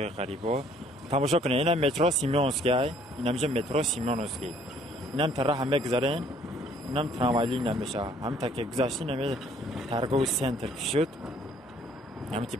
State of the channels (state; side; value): normal; both; correlation 0.61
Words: غریبا. تماشا کنید، اینم مترو سیمونسکی، اینم مترو سیمونسکی. اینم طرح هم بگذارین، اینم تراموای نمیشه. هم تا که گذاشتین نمی ترگو سنتر شد. اینم تی